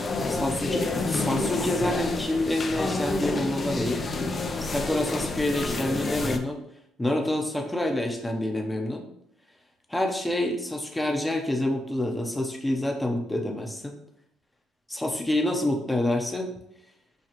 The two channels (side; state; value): both; normal; correlation 0.85